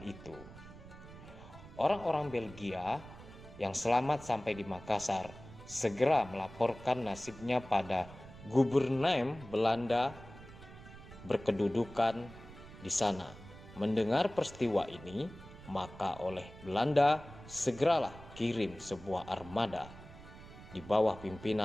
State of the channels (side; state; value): right; noise; rumble, 17 dB below the sound